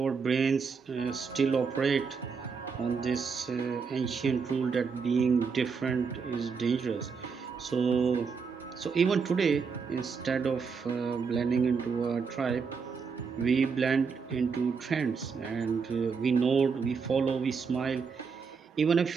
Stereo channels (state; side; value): quieter; left; 5.5 dB